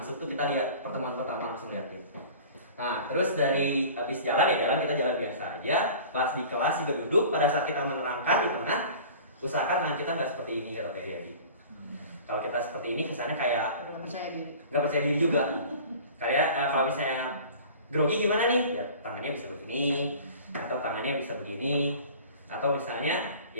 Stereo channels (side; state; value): both; inverted; correlation -0.42